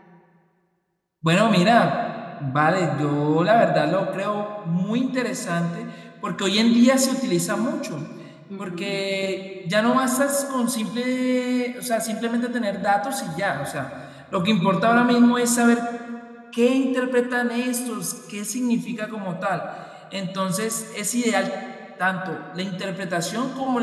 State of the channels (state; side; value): identical; both; correlation 1.00